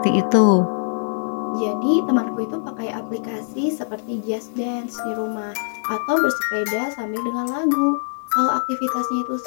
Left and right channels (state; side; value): silent; right; digital silence